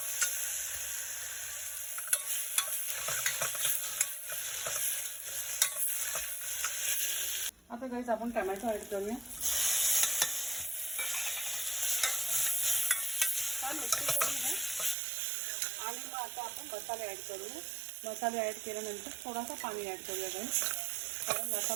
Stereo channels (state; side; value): drops out; left; at 15.0 s